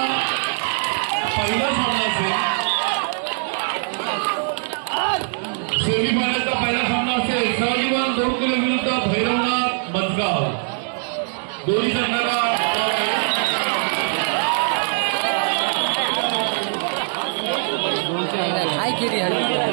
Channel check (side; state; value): left; silent; digital silence